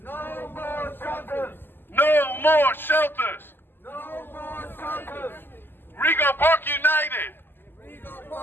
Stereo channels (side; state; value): right; late; 0.096 ms